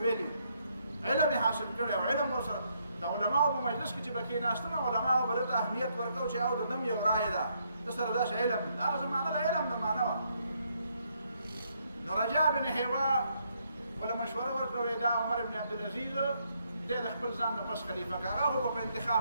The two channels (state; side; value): inverted; both; correlation -0.73